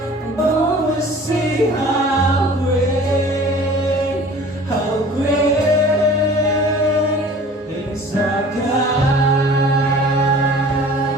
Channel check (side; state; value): both; normal; correlation 0.46